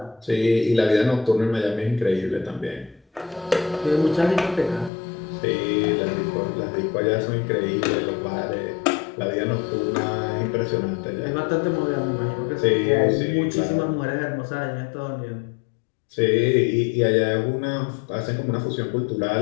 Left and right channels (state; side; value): drops out; right; at 4.9 s